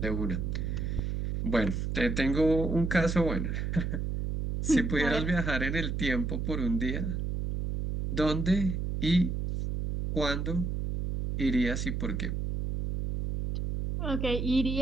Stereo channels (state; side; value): noise; right; hum, 2 dB below the sound